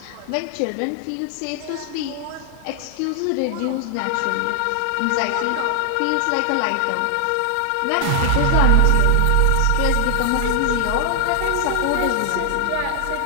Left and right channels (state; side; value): different; both; correlation 0.00